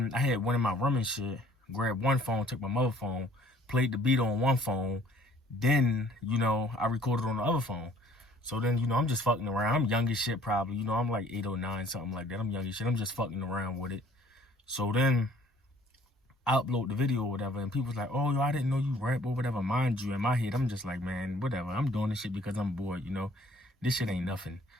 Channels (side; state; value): both; normal; correlation 0.56